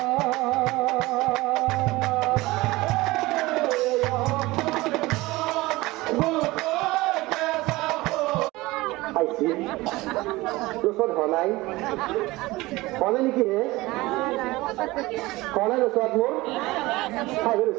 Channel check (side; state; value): left; quieter; 20.3 dB